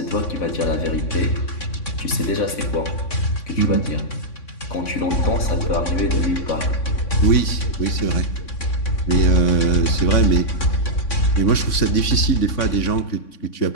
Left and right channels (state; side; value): late; right; 3.6 ms